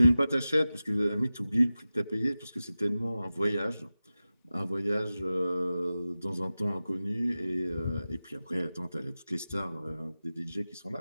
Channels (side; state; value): both; inverted; correlation -0.95